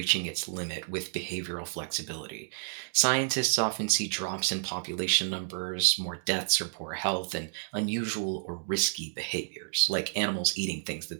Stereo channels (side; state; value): left; silent; digital silence